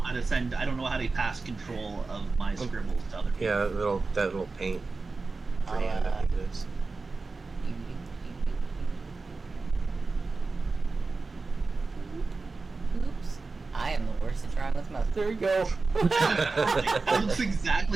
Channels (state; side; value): quieter; left; 3.9 dB